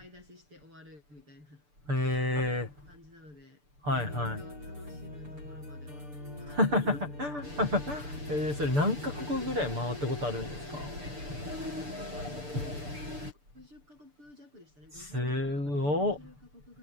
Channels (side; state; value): left; late; 6.8 ms